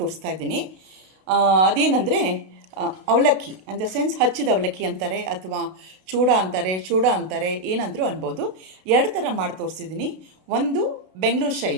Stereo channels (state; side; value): late; left; 32 ms